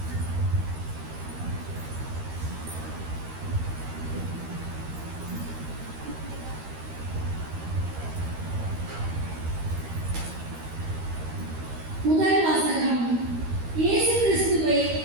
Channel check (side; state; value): left; late; 13 ms